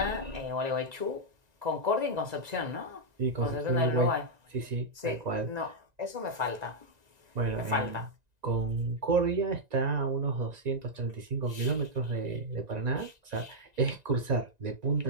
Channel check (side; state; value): left; late; 1.9 ms